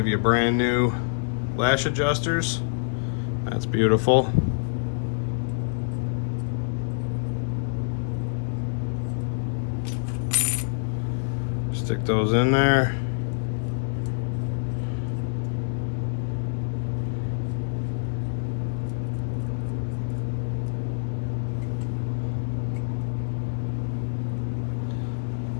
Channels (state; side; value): silent; right; digital silence